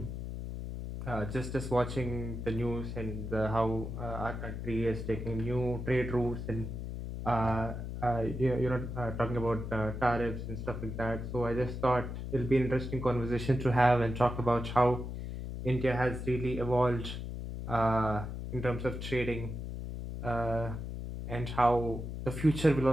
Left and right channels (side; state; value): left; noise; hum, 6 dB below the sound